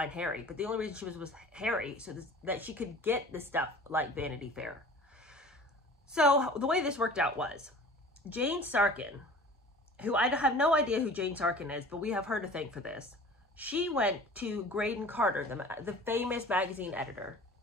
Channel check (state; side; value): normal; both; correlation 0.43